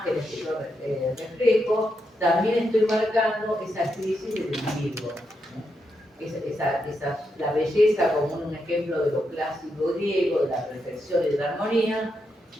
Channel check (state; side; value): normal; both; correlation 0.83